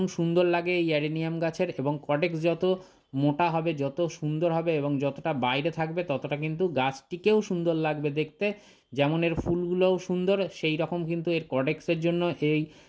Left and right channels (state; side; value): identical; both; correlation 1.00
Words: সুন্দর লাগে এই অ্যাডেনিয়াম গাছের, এবং কডেক্স যত মোটা হবে, যত সুন্দর হবে, এবং যতটা বাইরে থাকবে ততটা কিন্তু গাছটিকেও সুন্দর লাগবে দেখতে। যেমন এর ফুলগুলোও সুন্দর, সেই রকম কিন্তু এর কডেক্সের জন্য এই